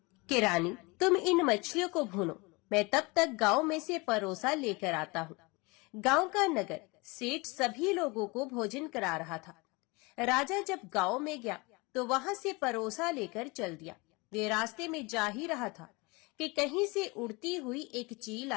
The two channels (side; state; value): right; quieter; 26.2 dB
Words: कि रानी, तुम इन मछलियों को भूनो, मैं तब तक गांव में से परोसा लेकर आता हूँ। गांव का नगर सेठ सभी लोगों को भोजन करा रहा था। राजा जब गांव में गया तो वहां से परोसा लेकर चल दिया। वे रास्ते में जा ही रहा था कि कहीं से उड़ती हुई एक चील